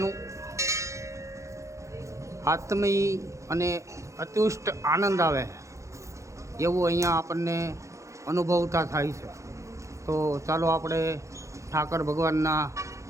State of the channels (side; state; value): left; late; 0.15 ms